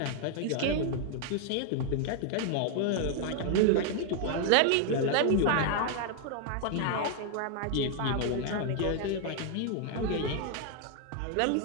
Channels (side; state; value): both; different; correlation 0.00